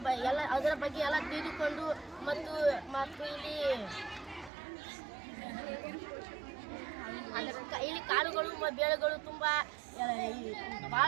ಎಲ್ಲ ಅದರ ಬಗ್ಗೆ ಎಲ್ಲ ತಿಳಿದುಕೊಂಡು ಮತ್ತು ಇಲ್ಲಿ ಕಾಳುಗಳು ಬೇಳೆಗಳು ತುಂಬ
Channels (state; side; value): drops out; left; at 4.5 s